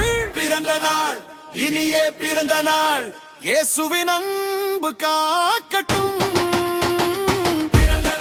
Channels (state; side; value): identical; both; correlation 1.00